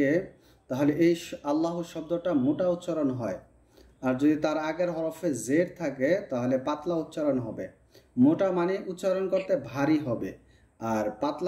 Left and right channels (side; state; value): both; identical; correlation 1.00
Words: তাহলে এই আল্লাহু শব্দটা মোটা উচ্চারণ হয়, আর যদি তার আগের হরফে জেড থাকে তাহলে পাতলা উচ্চারণ হবে। মোটা মানে উচ্চারণ করতে ভারী হবে, আর